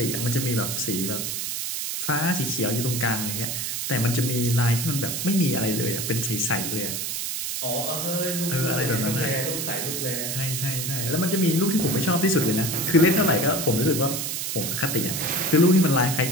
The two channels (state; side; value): noise; right; hiss, 3 dB below the sound